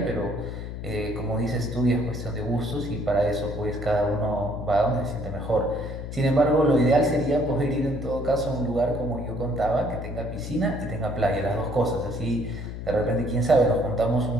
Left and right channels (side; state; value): left; noise; hum, 7 dB below the sound